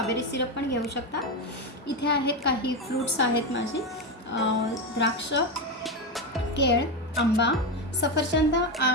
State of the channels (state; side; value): normal; both; correlation 0.13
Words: सिरप पण घेऊ शकता। इथे आहेत काही फ्रूट्स आहेत माझे, द्राक्ष, केळ, आंबा, सफरचंद,